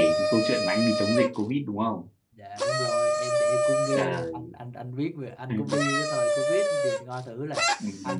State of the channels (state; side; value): identical; both; correlation 1.00